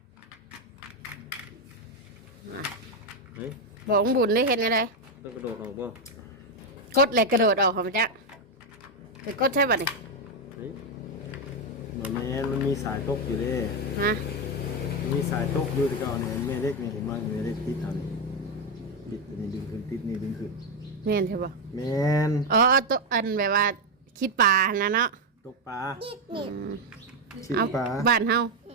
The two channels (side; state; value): both; normal; correlation 0.05